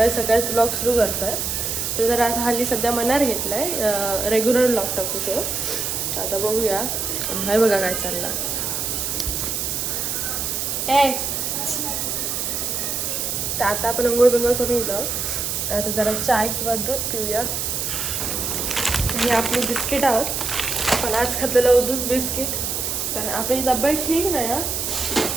सकाळीच ब्लॉग सुरू करतो आहे. तर जर आता हल्ली सध्या मनार घेतला आहे रेग्युलर ब्लॉग टाकूचं. आता बघूया. हाय बघा काय चाललं. तर आता आपण अंघोळ बिंघोळ करून येतो. आता जरा चाय किंवा दूध पिऊया. हे आपली बिस्किट आहोत. आपण आज खाल्लेलं दूध बिस्किट, कारण आपली तब्येत ठीक नाही हा.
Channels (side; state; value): right; noise; hiss, 1 dB below the sound